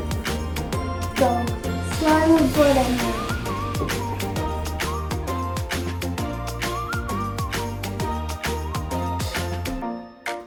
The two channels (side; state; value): both; identical; correlation 1.00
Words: So slime will put in there.